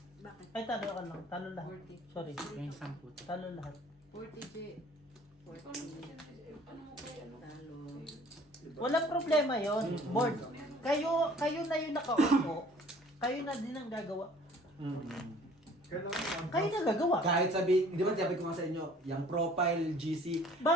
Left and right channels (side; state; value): both; normal; correlation 0.53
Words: Bakit? Ay, talo ka lang. Talo lahat. Worthy. Sorry. Yung 10. Talo lahat. 40 J. Talo. Walang problema yon, board. Kayo na yung nakaupo. Kayo na din ang gagawa. Kailangan Kayo na gagawa. Kahit sabi, di ba sabi ko nga sa inyo, yung profile GC,